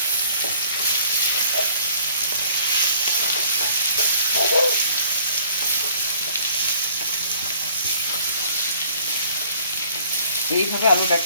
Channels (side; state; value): both; inverted; correlation -0.57